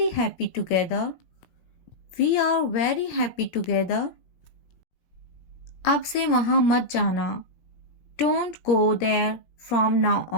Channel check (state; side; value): late; right; 17 ms